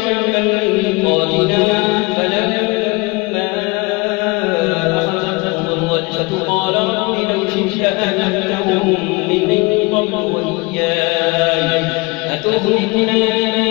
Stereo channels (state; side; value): quieter; right; 25.4 dB